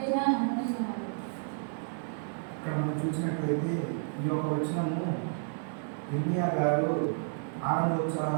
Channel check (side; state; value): left; silent; digital silence